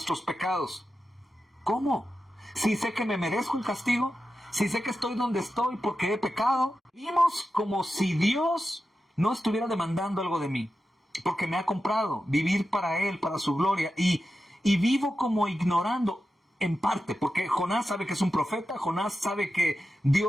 pecados? ¿Cómo? Si sé que me merezco el castigo, si sé que estoy donde estoy porque he pecado, vivimos como si Dios no estuviera demandando algo de mí, porque me ha comprado vivir para Él, para su gloria, y vivo como ignorando en parte, porque Jonás sabe que es un profeta, Jonás sabe que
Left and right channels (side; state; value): both; normal; correlation 0.91